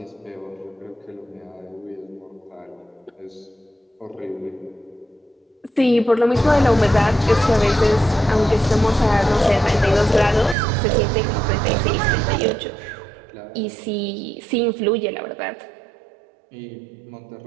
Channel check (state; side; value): drops out; left; at 10.6 s